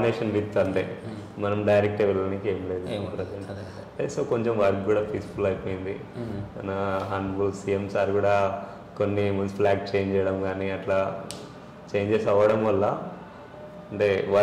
విత్, అంటే మనం డైరెక్ట్ వెళ్ళడానికి ఏం లేదు ప్రజెంట్. సో కొంచెం వర్క్ కూడా పీస్ఫుల్ అయిపోయింది. మన హానరబుల్ సీఎం సార్ కూడా కొన్ని మున్సిపల్ యాక్ట్ చేంజ్ చేయడం కానీ అట్లా చేంజెస్ అవ్వడం వల్ల అంటే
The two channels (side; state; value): both; identical; correlation 1.00